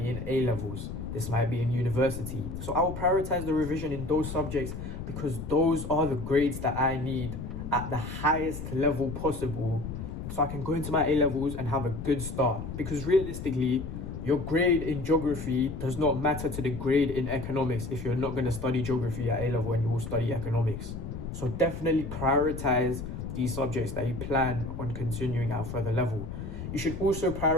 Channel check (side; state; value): left; noise; rumble, 7 dB below the sound